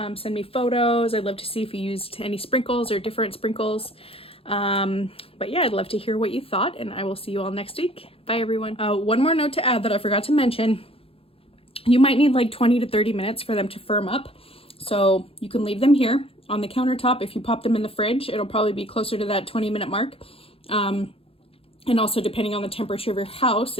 Send me photos. I'd love to see if you used any sprinkles or different sprinkles. But yeah, I'd love to hear what you thought, and I will see you all next week. Bye everyone. One more note to add that I forgot to mention. You might need like 20 to 30 minutes for them to firm up. So you can leave them here on the countertop. If you pop them in the fridge, it'll probably be closer to that 20-minute mark. And also depending on the temperature of your house,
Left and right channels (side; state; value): right; late; 0.27 ms